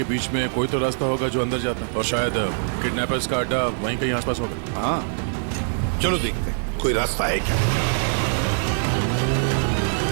बीच में कोई तो रास्ता होगा जो अंदर जाता है, और शायद किडनैपर्स का अड्डा वहीं कहीं आसपास होगा। हाँ, चलो देखते हैं कोई रास्ता है क्या।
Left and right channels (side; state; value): left; silent; digital silence